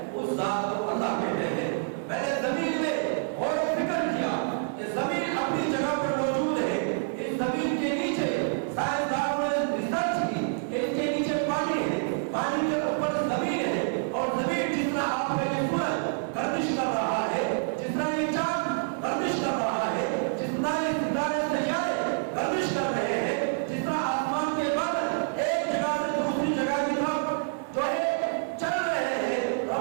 اس ذات کو اللہ کہتے ہیں۔ میں نے زمین میں غور و فکر کیا کہ زمین اپنی جگہ پر موجود ہے، اس زمین کے نیچے سائنسدانوں نے ریسرچ کی کہ اس کے نیچے پانی ہے، پانی کے اوپر زمین ہے، اور زمین جس طرح آپ کا یہ سورج گردش کر رہا ہے، جس طرح یہ چاند گردش کر رہا ہے، جس طرح یہ ستارے سیارے گردش کر رہے ہیں، جس طرح آسمان کے بادل ایک جگہ سے دوسری جگہ کی طرف جو ہے چل رہے ہیں،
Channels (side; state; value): left; silent; 60 dB below the other